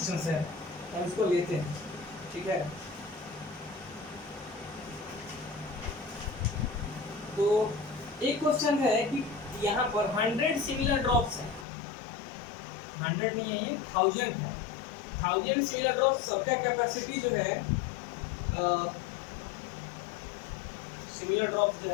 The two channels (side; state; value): right; drops out; at 11.7 s